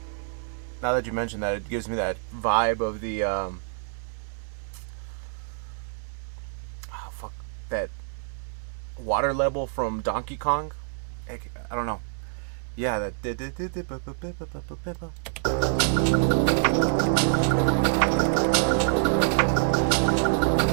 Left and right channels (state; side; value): silent; left; digital silence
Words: Now that you mentioned that, it gives me that vibe of the, that water level from Donkey Kong. I don't know. Yeah, that.